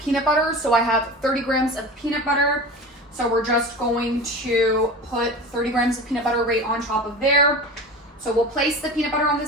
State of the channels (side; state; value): both; normal; correlation 0.32